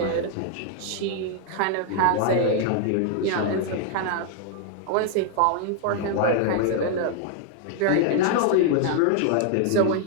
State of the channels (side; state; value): both; different; correlation 0.00